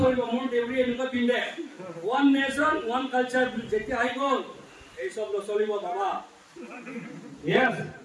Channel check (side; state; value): both; identical; correlation 1.00